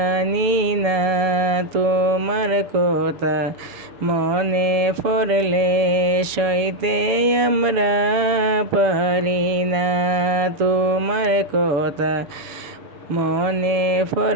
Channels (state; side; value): late; left; 6.6 ms